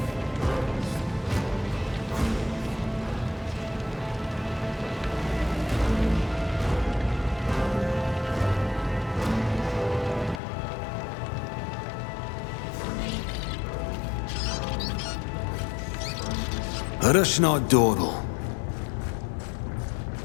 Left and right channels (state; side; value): drops out; right; at 10.4 s